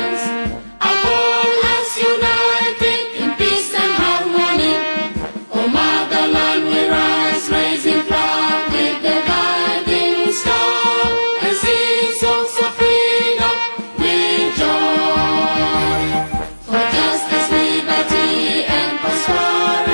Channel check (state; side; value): inverted; both; correlation -1.00